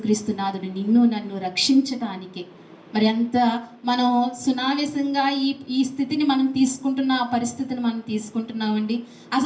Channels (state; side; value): identical; both; correlation 1.00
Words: నాథుడు నిన్ను నన్ను రక్షించడానికి మరి ఎంత మనం సునావేశంగా ఈ స్థితిని మనం తీసుకుంటున్న పరిస్థితిని మనం తీసుకుంటున్నామండి.